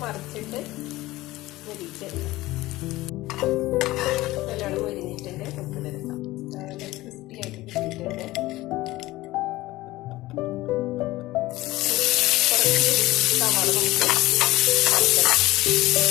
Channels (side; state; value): right; quieter; 18.2 dB